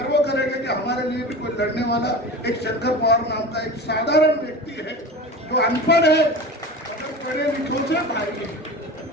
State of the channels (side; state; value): both; normal; correlation 0.31